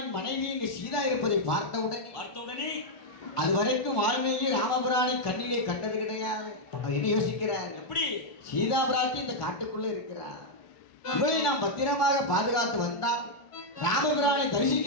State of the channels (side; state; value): right; late; 1.4 ms